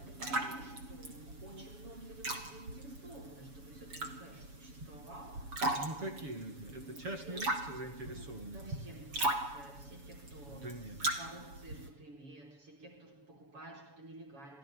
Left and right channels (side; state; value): left; late; 7.1 ms